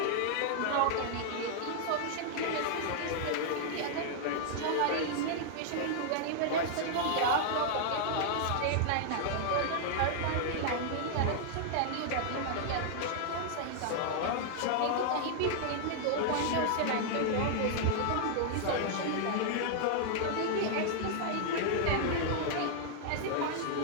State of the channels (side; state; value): both; different; correlation -0.01